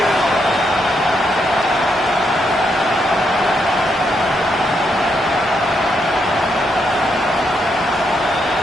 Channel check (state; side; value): normal; both; correlation 0.78